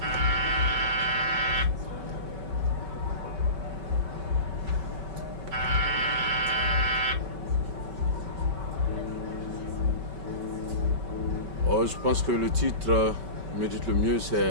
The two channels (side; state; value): left; late; 5.2 ms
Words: Oh, je pense que le titre me dit le mieux,